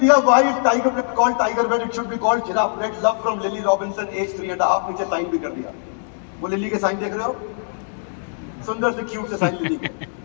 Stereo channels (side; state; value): right; silent; digital silence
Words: why is tiger bread called tiger bread, it should be called giraffe bread, love from Lily Robinson, age 3.5। नीचे साइन भी कर दिया। वो लिली के साइन देख रहे हो, सुंदर से क्यूट से साइन लिली के।